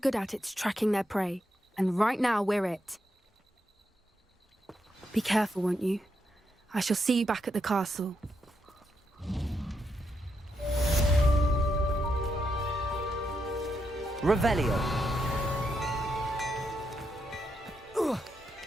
at, it's tracking their prey. And right now, we're it. Be careful, won't you? I shall see you back at the castle. Revelio.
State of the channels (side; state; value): both; normal; correlation 0.82